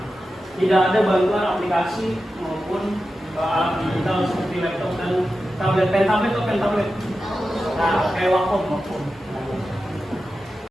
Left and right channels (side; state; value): both; normal; correlation 0.92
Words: Tidak ada bantuan aplikasi maupun alat digital seperti laptop dan tablet, pen tablet. Nah, kayak Wacom.